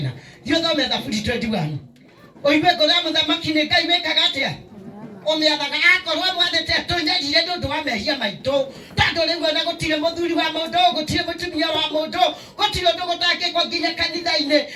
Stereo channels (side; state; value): both; identical; correlation 1.00